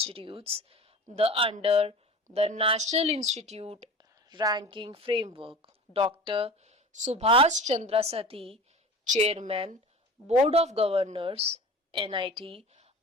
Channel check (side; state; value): both; normal; correlation 0.36